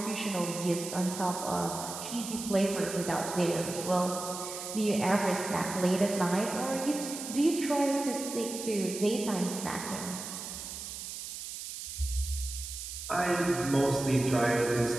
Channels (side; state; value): right; noise; hiss, 8 dB below the sound